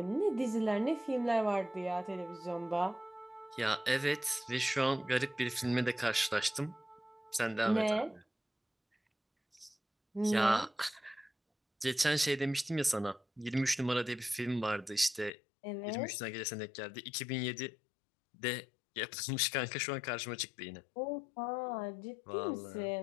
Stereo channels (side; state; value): right; drops out; at 15.3 s